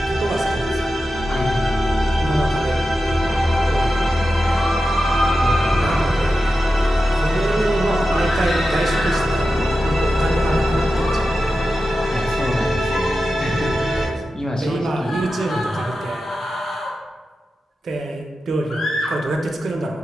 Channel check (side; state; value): both; normal; correlation 0.91